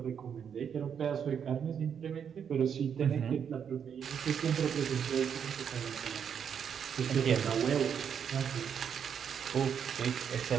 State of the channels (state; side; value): quieter; left; 7.7 dB